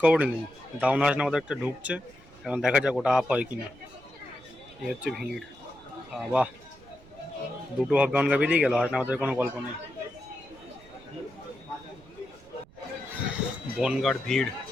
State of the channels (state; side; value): noise; right; rumble, 24 dB below the sound